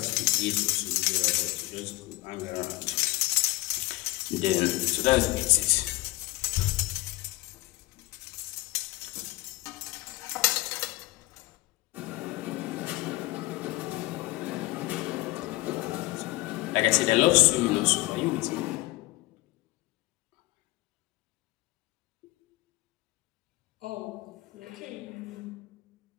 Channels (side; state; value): right; quieter; 20.5 dB